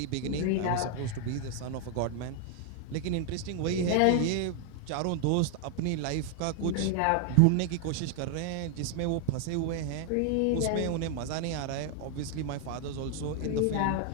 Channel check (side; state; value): both; different; correlation 0.00